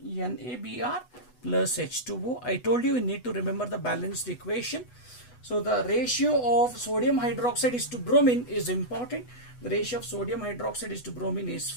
plus H2O. I told you need to remember the balanced equation. So the ratio of sodium hydroxide is to bromine is important. The ratio of sodium hydroxide is to bromine is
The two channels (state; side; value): late; right; 8.1 ms